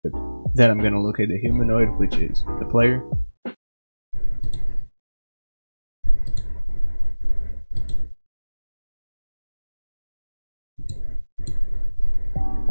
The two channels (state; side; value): inverted; both; correlation -1.00